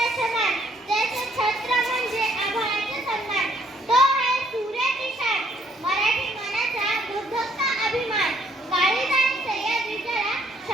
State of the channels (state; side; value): normal; both; correlation 0.66